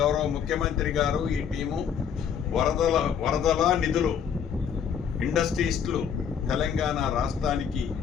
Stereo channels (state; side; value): quieter; right; 7.7 dB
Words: గౌరవ ముఖ్యమంత్రి గారు ఈ టీము వరదల నిధులు ఇండస్ట్రీస్లు తెలంగాణ రాష్ట్రానికి